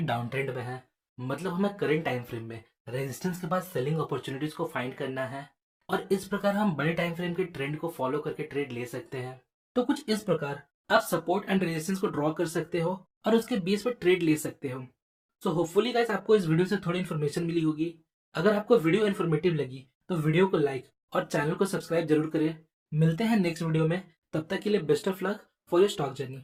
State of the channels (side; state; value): both; identical; correlation 1.00